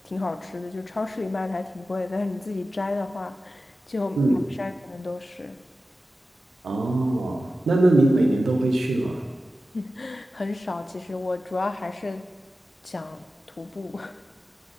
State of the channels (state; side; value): normal; both; correlation 0.94